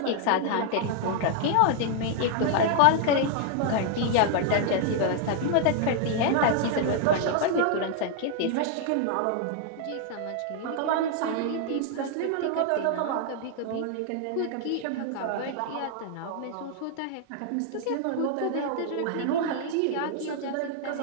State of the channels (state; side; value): different; both; correlation 0.00